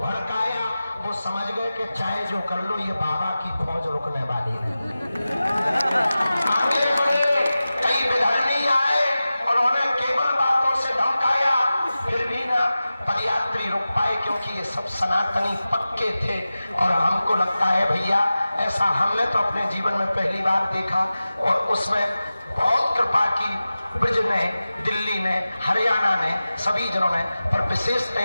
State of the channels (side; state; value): both; inverted; correlation -0.95